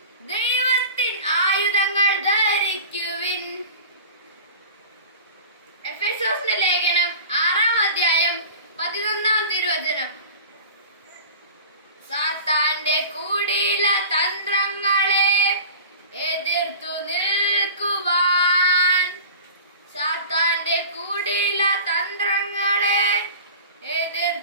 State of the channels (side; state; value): both; inverted; correlation -0.38